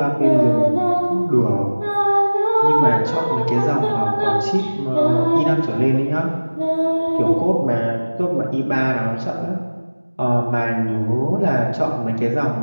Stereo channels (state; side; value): inverted; both; correlation -1.00